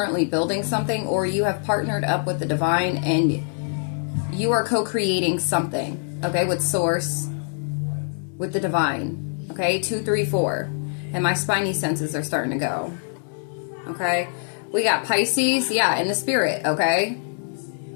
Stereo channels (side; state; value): right; silent; digital silence